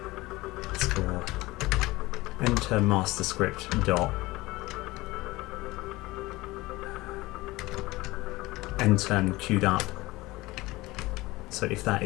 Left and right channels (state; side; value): quieter; right; 20.2 dB